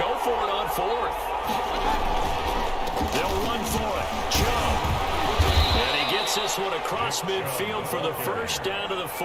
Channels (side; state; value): both; identical; correlation 1.00